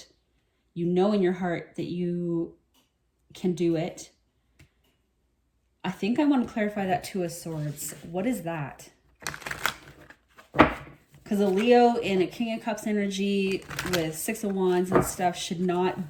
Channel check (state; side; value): identical; both; correlation 1.00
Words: You know in your heart that you can do it. I think I want to clarify that Two of Swords. What is that? Because a Leo in a King of Cups energy with Six of Wands and stuff should